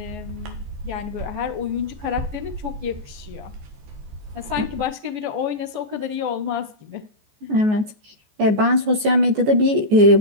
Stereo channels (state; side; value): late; left; 14 ms